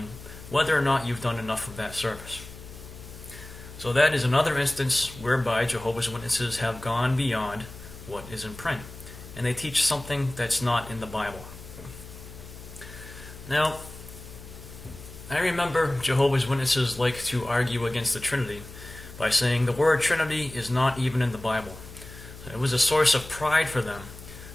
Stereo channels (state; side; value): noise; left; hum, 15 dB below the sound